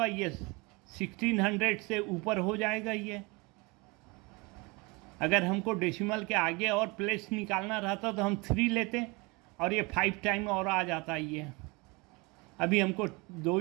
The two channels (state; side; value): quieter; left; 26.7 dB